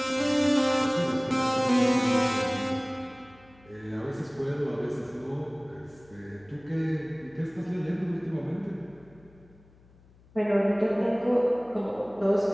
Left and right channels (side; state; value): left; noise; hum, 27 dB below the sound